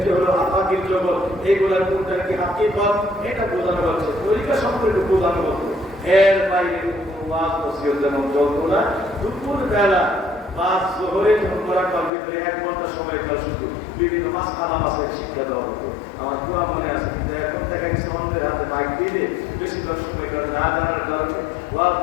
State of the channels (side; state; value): right; drops out; at 12.1 s